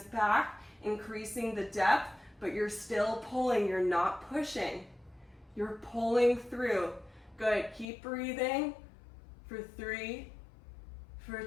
back, increasing the depth, but you're still pulling, you're not pushing. You're pulling through. Good, keep breathing for 3, for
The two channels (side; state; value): right; drops out; at 7.9 s